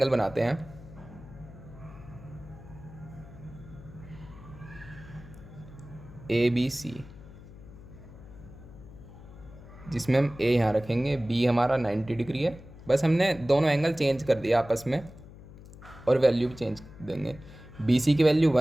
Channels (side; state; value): left; noise; hum, 18 dB below the sound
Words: बनाते हैं। ए बी सी, जिसमें हम ए यहाँ रखेंगे, बी हमारा 90 डिग्री है। बस हमने दोनों एंगल चेंज कर दिया आपस में और वैल्यू भी चेंज देंगे। बी सी की वैल्यू